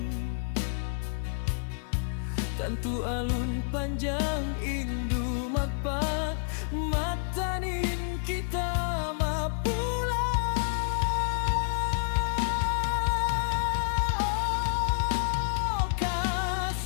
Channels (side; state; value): right; silent; 59 dB below the other